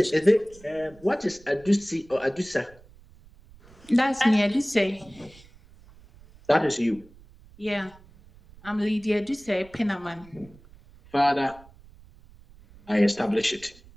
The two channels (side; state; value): right; noise; rumble, 24 dB below the sound